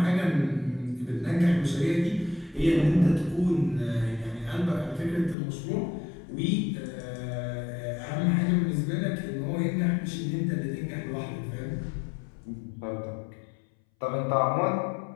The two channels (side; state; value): right; drops out; at 5.4 s